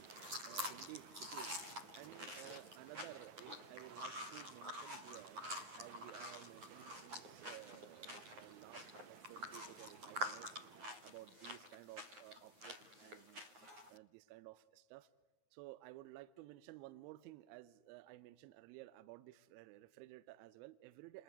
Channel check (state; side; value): late; left; 9.5 ms